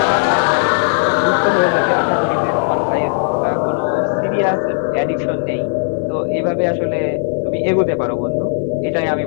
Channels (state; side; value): silent; right; digital silence